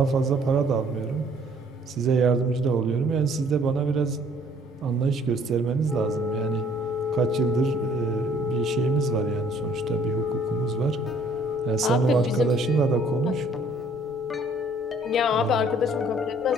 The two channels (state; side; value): normal; both; correlation 0.59